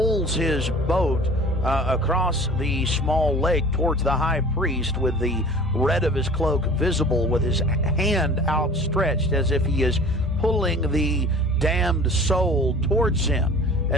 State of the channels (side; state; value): both; normal; correlation 0.44